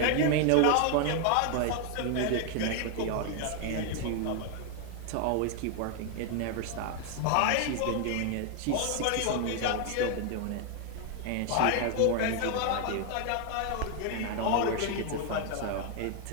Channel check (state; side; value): different; both; correlation 0.00